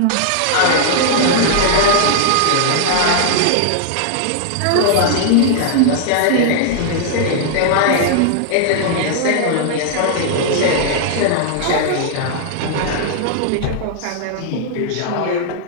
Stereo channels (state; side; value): different; both; correlation -0.01